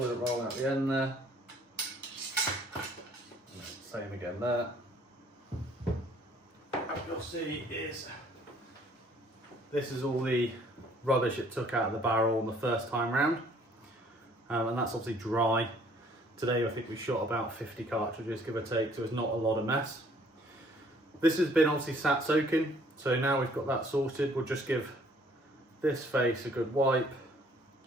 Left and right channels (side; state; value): both; normal; correlation 0.59